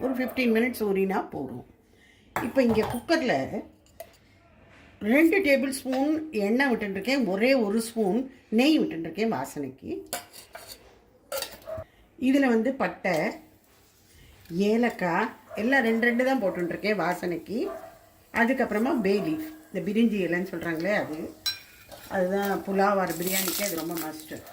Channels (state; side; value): identical; both; correlation 1.00